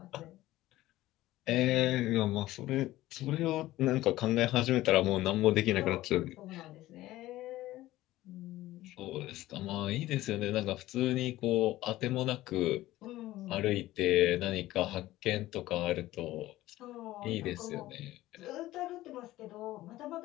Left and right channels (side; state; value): right; quieter; 16.2 dB